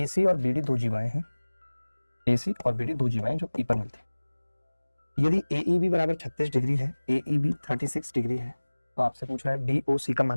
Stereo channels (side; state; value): both; inverted; correlation -1.00